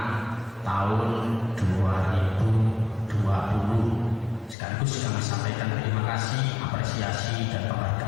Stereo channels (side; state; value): right; drops out; at 4.5 s